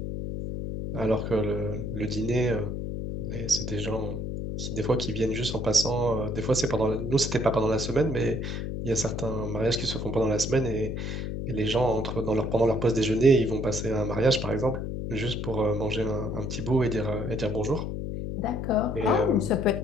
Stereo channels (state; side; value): noise; left; hum, 4 dB below the sound